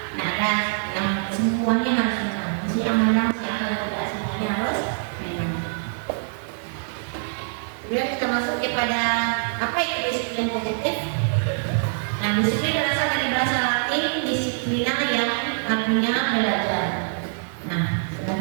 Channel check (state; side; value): silent; left; digital silence